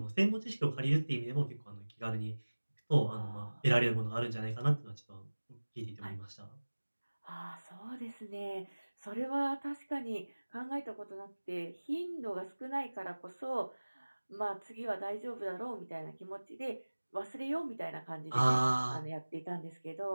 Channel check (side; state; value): both; inverted; correlation -1.00